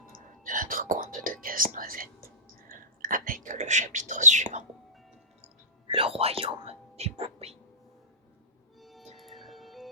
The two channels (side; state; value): both; normal; correlation -0.18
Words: de notre conte de Casse-Noisette avec le chapitre suivant, le royaume des poupées.